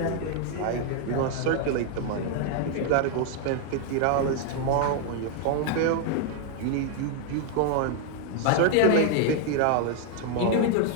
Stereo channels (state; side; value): different; both; correlation 0.00